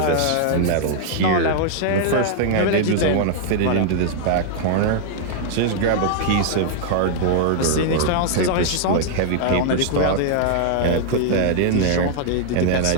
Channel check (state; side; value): different; both; correlation -0.01